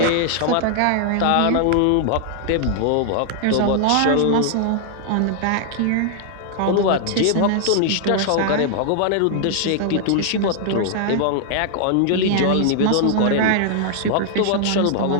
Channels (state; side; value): different; both; correlation 0.00